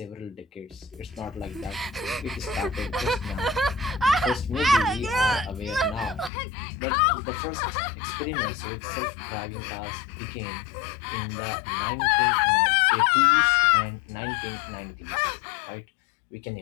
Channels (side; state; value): right; drops out; at 6.3 s